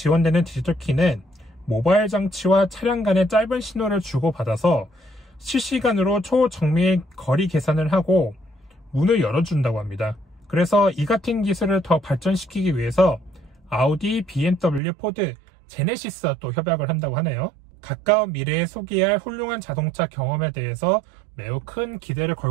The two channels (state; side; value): drops out; left; at 14.8 s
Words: 디지털 키는 모바일 장치와 차량 간의 짧은 신호를 주고받아서 실시간으로 초정밀 거리 계산을 하고 문을 열어준다고 합니다. 그래서 이 같은 기술을 더 발전시키기 위해서 아우디, BMW, 포드, 제네시스와 또 협약을 한다고 하네요. 가까운 미래에 소개할 훌륭한 자동차 경험에 대해서 매우 큰 기대를